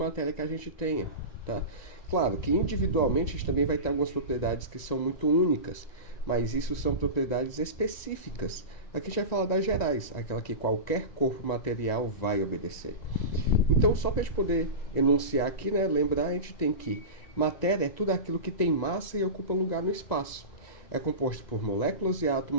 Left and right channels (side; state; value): right; late; 1.9 ms